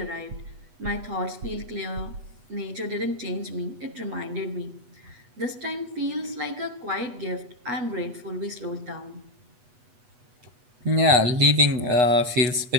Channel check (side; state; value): left; late; 8.2 ms